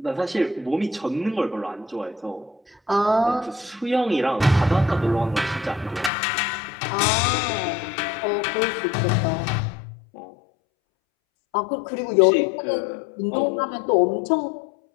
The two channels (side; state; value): right; drops out; at 6.1 s